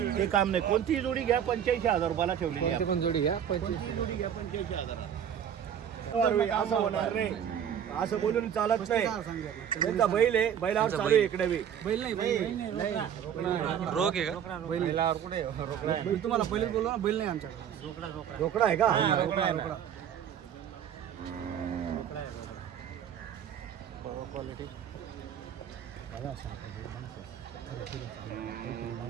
ते काम नाही कोणतीही जोडी घ्या 85,000 रुपयाला ठेवलेली आहे. पण जोडी घ्या कोणतीही जोडी घ्या 85,000 असं होणार रे असं बोलून चालत नाही त्यांचा बैल आहे बैलावर चालू आहे इकडे बी बैल नाही रोग आहे का बैलावर कुठे बैल तुम्हाला पहिले बोललो ना बैल नाही आमच्याकडे रोकडा आहे का रोकडा क्वालिटी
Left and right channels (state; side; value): quieter; left; 9.0 dB